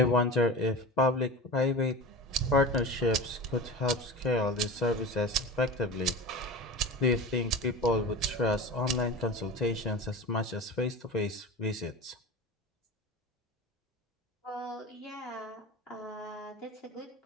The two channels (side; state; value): both; normal; correlation 0.30